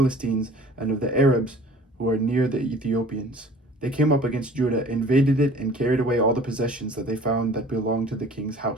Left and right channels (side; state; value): both; normal; correlation 0.48